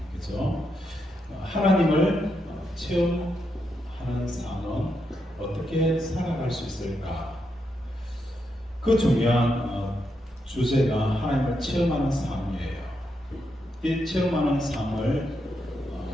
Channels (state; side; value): normal; both; correlation 0.82